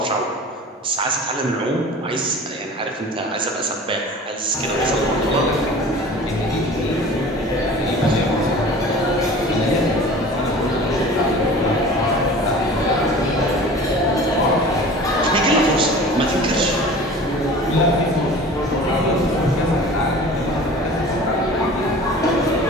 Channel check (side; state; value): both; normal; correlation 0.41